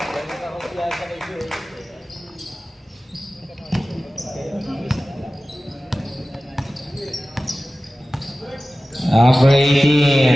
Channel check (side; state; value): both; normal; correlation 0.96